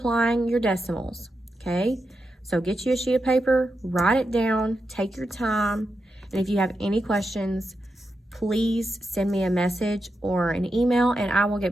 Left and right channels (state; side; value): normal; both; correlation 0.87